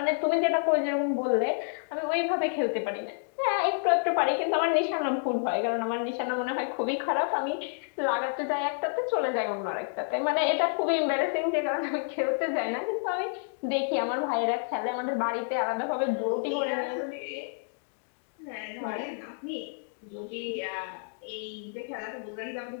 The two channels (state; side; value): silent; right; digital silence